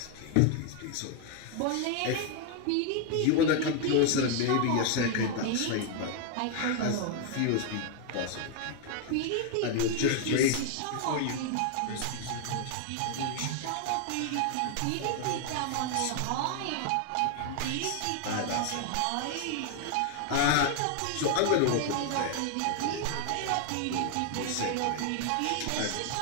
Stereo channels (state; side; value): different; both; correlation 0.00